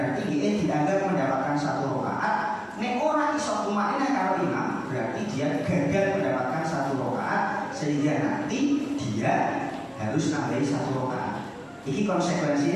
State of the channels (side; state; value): both; identical; correlation 1.00